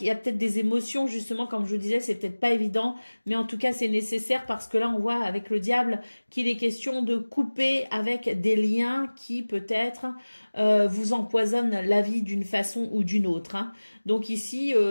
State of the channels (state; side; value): inverted; both; correlation -1.00